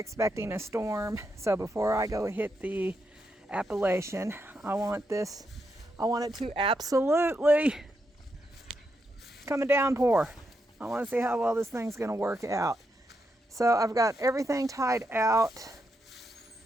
a storm. So before I go hit the Appalachian, I want it to absolutely come a downpour. I want to see how well this thing's going to work out. So I've got everything tied out.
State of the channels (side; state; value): both; normal; correlation 0.83